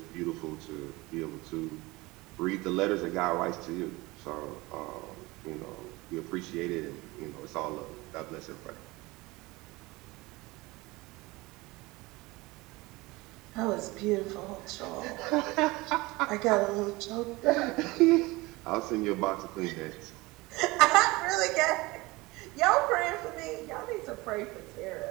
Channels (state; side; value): quieter; left; 22.1 dB